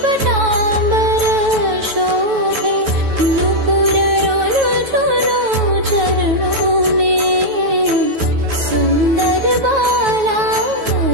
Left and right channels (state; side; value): late; left; 9.2 ms